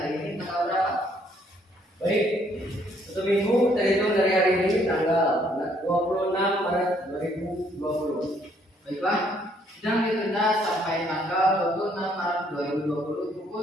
ini tanggal berapa? Baik, 1 minggu terhitung dari hari ini tanggal 26 Maret 2020. Baiklah, sidang ditunda sampai tanggal 26 Maret 2020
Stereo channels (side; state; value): both; normal; correlation 0.67